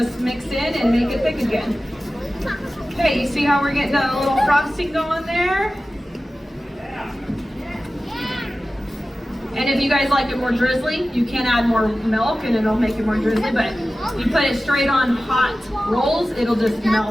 mix in and make it thick again. Okay, you see how we're getting a little frosting going there? And if you guys like it more drizzly, you can add more milk and it'll make it more drizzly, but you put it straight on hot rolls, it'll just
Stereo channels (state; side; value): normal; both; correlation 0.95